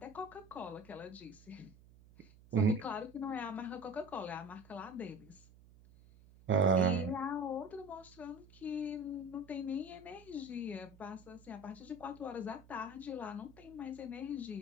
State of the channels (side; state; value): right; noise; hum, 23 dB below the sound